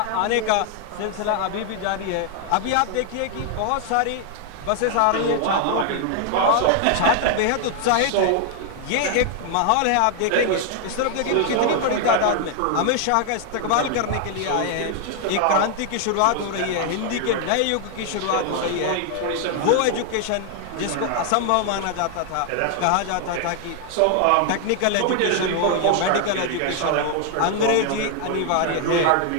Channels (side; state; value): both; different; correlation 0.00